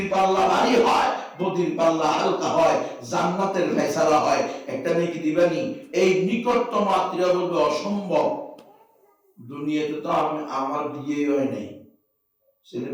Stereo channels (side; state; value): both; identical; correlation 1.00